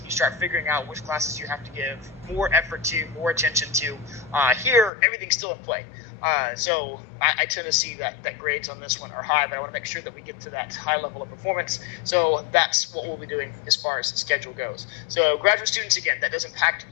You start figuring out which classes you have to give more effort to, more attention to. Here, everything's still in play. So I tend to see that grades on this one are high, but I want to make sure that we get to that high level of performance. So that's what we'll be doing as far as the schedule goes. So graduate students, again, that does impact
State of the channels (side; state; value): right; drops out; at 4.9 s